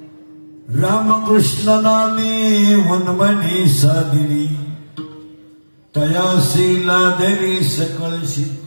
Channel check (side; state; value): both; inverted; correlation -1.00